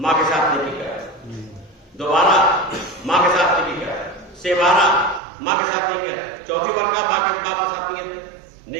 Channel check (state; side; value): drops out; left; at 5.2 s